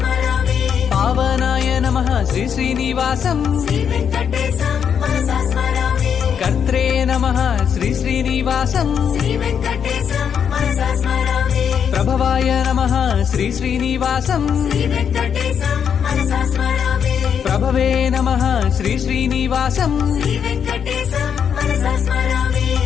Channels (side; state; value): right; quieter; 7.7 dB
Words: పావనాయ నమః శ్రీ శ్రీనివాసం శ్రీ వెంకటేశం మనసా స్మరామి. కర్త్రే నమః శ్రీ శ్రీనివాసం శ్రీ వెంకటేశం మనసా స్మరామి. ప్రభవాయ నమః శ్రీ శ్రీనివాసం శ్రీ వెంకటేశం మనసా స్మరామి. ప్రభవే నమః శ్రీ శ్రీనివాసం శ్రీ వెంకటేశం మనసా స్మరామి.